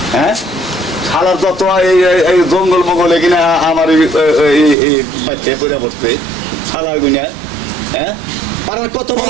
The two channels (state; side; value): drops out; left; at 4.8 s